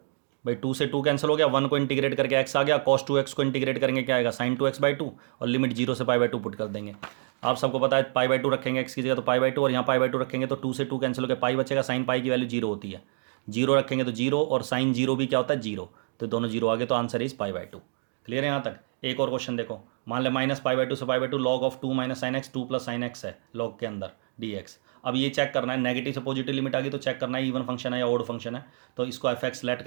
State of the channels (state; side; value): silent; left; 60 dB below the other